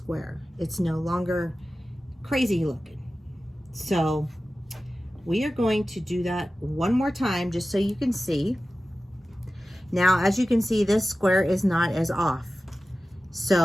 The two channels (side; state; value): both; normal; correlation 0.95